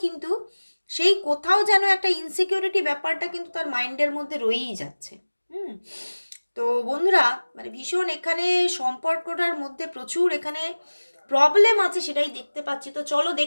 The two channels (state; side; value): inverted; both; correlation -1.00